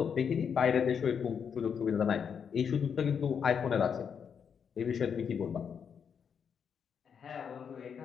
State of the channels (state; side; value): quieter; right; 7.1 dB